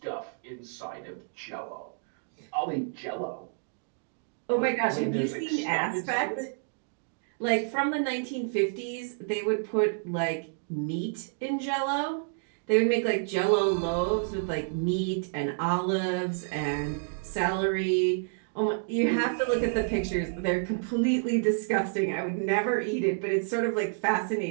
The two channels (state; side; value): silent; left; digital silence